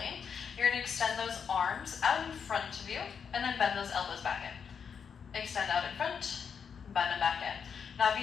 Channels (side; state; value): right; quieter; 6.7 dB